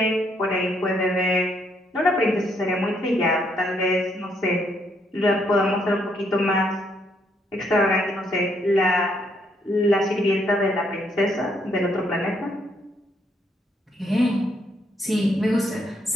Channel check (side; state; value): both; normal; correlation 0.72